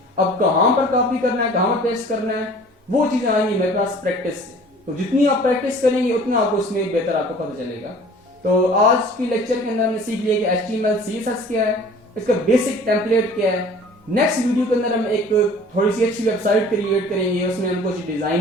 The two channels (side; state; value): both; normal; correlation 0.48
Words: अब कहां पर कॉपी करना है, कहां पर पेस्ट करना है, वो चीजें आएंगी मेरे पास प्रैक्टिस से। तो जितनी आप प्रैक्टिस करेंगे उतना आपको उसमें बेहतर आपको पता चलेगा। तो आज की लेक्चर के अंदर हमने सीख लिया कि HTML CSS क्या है, इसका बेसिक टेम्पलेट क्या है। नेक्स्ट वीडियो के अंदर हम एक थोड़ी सी अच्छी वेबसाइट क्रिएट करेंगे, उसमें हम कुछ